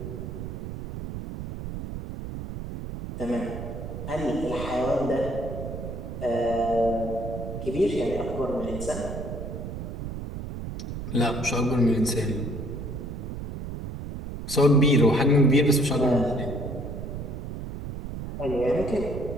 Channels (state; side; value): noise; right; rumble, 7 dB below the sound